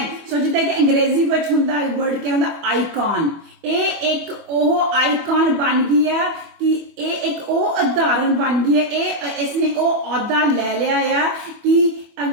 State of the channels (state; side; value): late; left; 24 ms